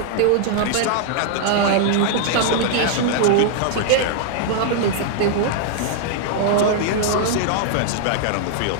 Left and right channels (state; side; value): different; both; correlation -0.01